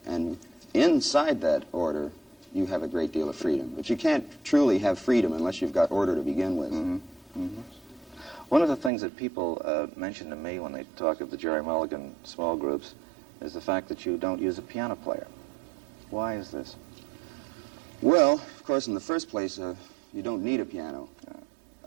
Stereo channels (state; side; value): drops out; left; at 8.9 s